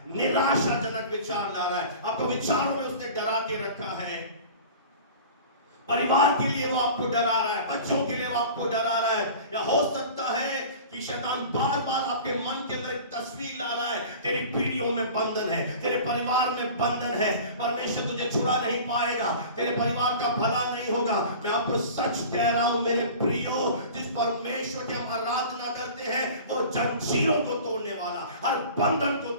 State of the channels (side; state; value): both; inverted; correlation -0.40